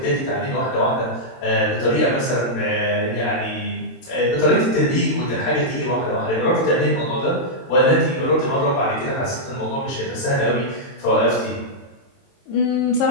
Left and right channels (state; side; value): late; right; 22 ms